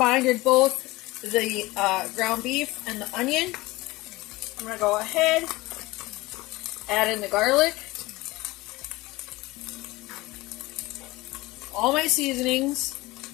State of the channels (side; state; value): right; quieter; 20.3 dB